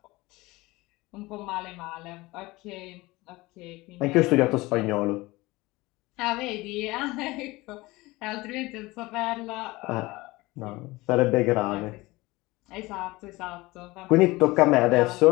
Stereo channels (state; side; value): quieter; right; 21.0 dB